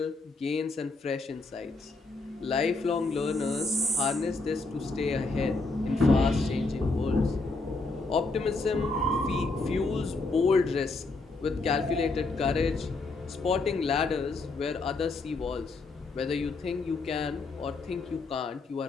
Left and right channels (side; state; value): right; quieter; 3.5 dB